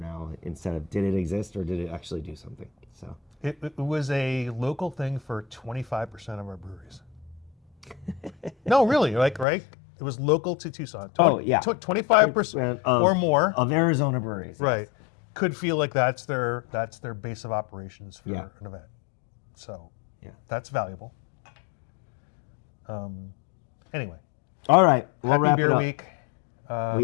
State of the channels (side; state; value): right; drops out; at 9.5 s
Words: instead of did it exist or did it actually do something? So it was a local thing for 25% of our breweries. No, really, right? It was local to Tucson. Oh, yeah. 25% or more of Arizona breweries. right, could feel like that's their base of operations for Yeah. an event. So Yeah. that's valuable. Anyway, All right. We'll happy wrap beer it up. week.